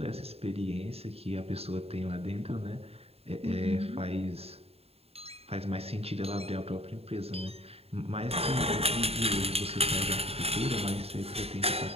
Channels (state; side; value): late; left; 0.29 ms